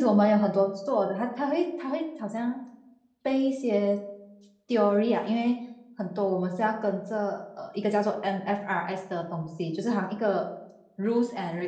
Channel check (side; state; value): both; identical; correlation 1.00